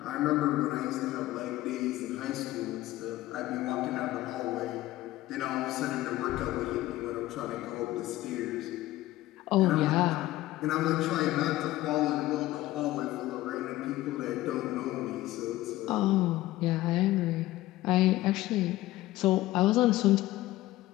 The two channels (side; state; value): right; quieter; 16.5 dB